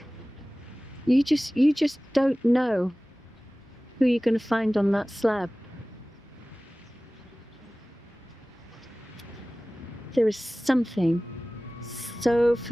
You just don't know who you're going to find on that slab. There is something so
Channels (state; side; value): normal; both; correlation 0.98